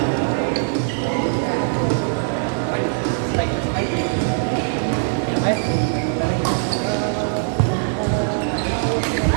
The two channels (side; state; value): left; silent; digital silence